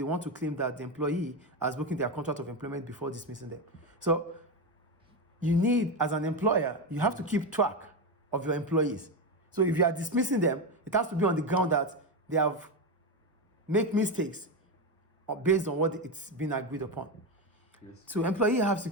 want to claim that the employee has broken their contract of employment before dismissing them. So you need, as an employer, you have to keep track of your employees. So if you are dismissing them, it has to be on the ground that they have made mistakes based on what it's been agreed upon. So employees have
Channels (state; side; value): normal; both; correlation 0.13